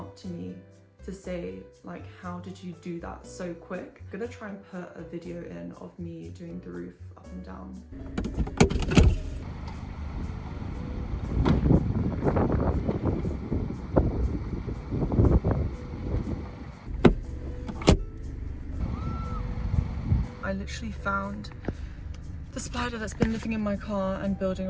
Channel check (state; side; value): identical; both; correlation 1.00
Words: to me to say how did you do that so quick? I'm gonna try and put a video in of me doing the roof up and down. I literally found the spider that's been living in my car and building